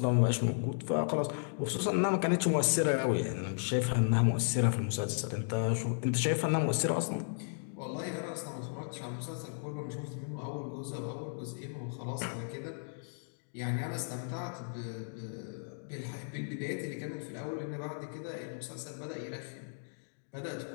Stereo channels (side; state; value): right; silent; digital silence